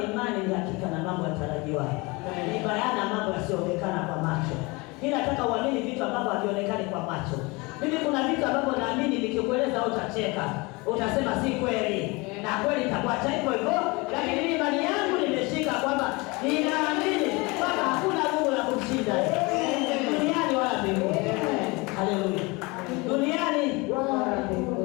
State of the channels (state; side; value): quieter; right; 25.6 dB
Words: imani ni hakika na mambo yatarajiwayo. Ni bayana mambo yasiyoonekana kwa macho. Mimi nataka uamini vitu ambavyo havionekani kwa macho. Mimi kuna vitu ambavyo naamini nikikueleza utacheka. Utasema si kweli. Na kweli itakuacha hivyo hivyo, lakini mimi imani yangu nimeshika kwamba ninaamini kwamba hakuna nguvu la kumshinda duniani wala mbinguni. Haleluya. Duniani